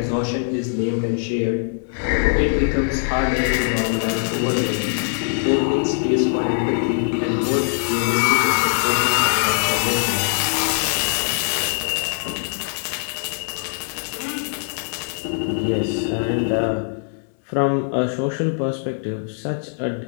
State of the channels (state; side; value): silent; right; digital silence